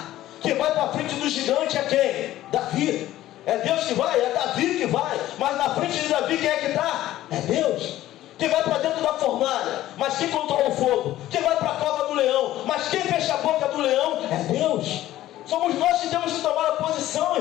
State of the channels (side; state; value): right; quieter; 14.3 dB